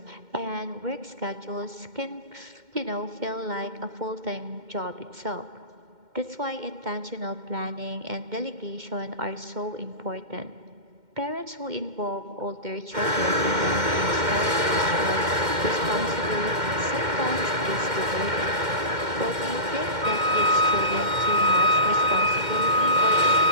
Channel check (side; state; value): left; late; 2.1 ms